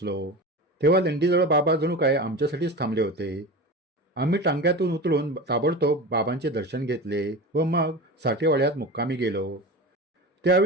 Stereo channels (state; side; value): normal; both; correlation 0.29